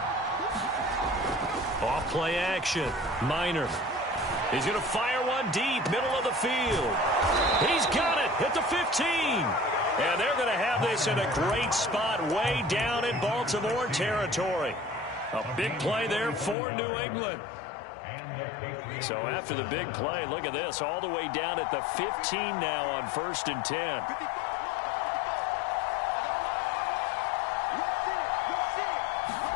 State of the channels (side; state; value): right; drops out; at 16.6 s